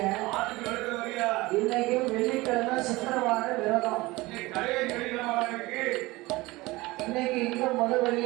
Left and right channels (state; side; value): quieter; left; 20.9 dB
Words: இன்னைக்கு வெள்ளிக்கிழமை சுக்கரவார விரதம். இன்னைக்கு இங்க முத